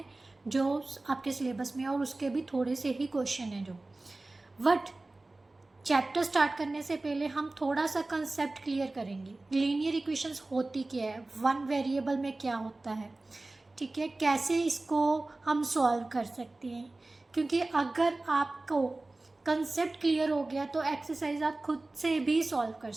जो आपके सिलेबस में है, और उसके भी थोड़े से ही क्वेश्चन हैं जो। बट चैप्टर स्टार्ट करने से पहले हम थोड़ा सा कंसेप्ट क्लियर करेंगे। लीनियर इक्वेशंस होती क्या है, वन वेरिएबल में क्या होता है, ठीक है, कैसे इसको हम सॉल्व कर सकते हैं। क्योंकि अगर आपको कंसेप्ट क्लियर हो गया तो एक्सरसाइज आप खुद से भी सॉल्व कर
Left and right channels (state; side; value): quieter; left; 3.0 dB